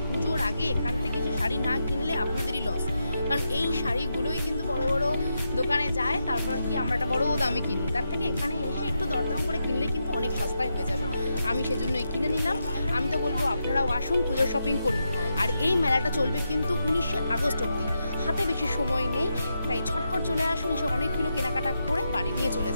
পুজোর আগে এখান থেকে যে শাড়ি না কিনলে আপনাদেরই লস। কারণ এই শাড়িগুলোই কিন্তু বড় বড় দোকানে যায়, তারপর কি আমরা একটা বড় দামে কিনি। তার থেকে এখানে এসে একটু দরদাম করে কিনলে কিন্তু অনেক সস্তায় হয়ে যাবে। আমি সেজন্যই কিনে নিলাম। আমি তো বলবো আপনারাও আসুন, পুজোর শপিং করুন। আর এই মেলাটা চলবে কিন্তু 19শে আগস্ট অবধি। হাতে বেশি সময় নেই, তাই ঝটপট চলে আসুন, এসে অনেকগুলো কেনাকাটা করে বাড়ি নিয়ে চলে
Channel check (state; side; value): inverted; both; correlation -0.85